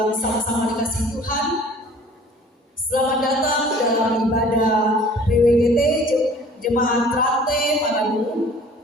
sama-sama dikasih Tuhan. Selamat datang dalam ibadah PWGT Jemaat Trate Marabu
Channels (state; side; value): normal; both; correlation 0.50